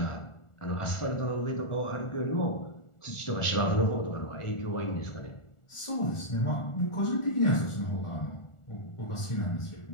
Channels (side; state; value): right; late; 1.4 ms